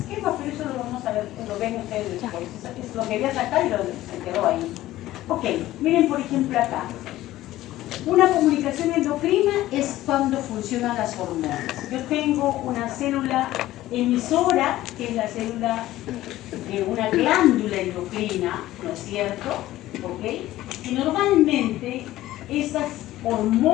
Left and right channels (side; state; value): right; quieter; 15.3 dB